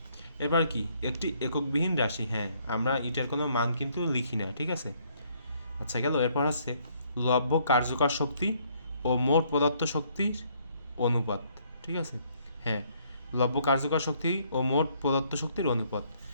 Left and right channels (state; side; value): inverted; both; correlation -0.67